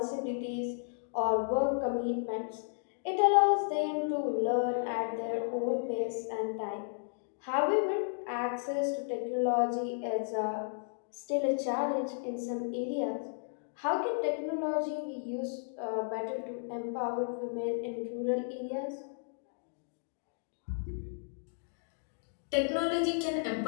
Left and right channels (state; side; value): silent; right; digital silence